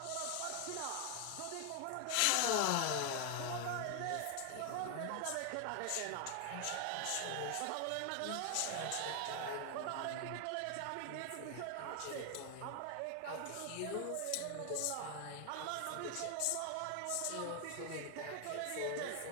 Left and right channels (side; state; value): both; different; correlation 0.00